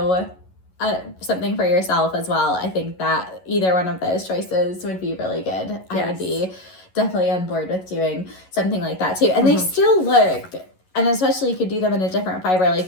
something for yourself as well, I think that either one of those choices would be really good. I would be definitely on board with doing something like that too. And they still look, and especially you could do them in a different fiber,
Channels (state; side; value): late; right; 11 ms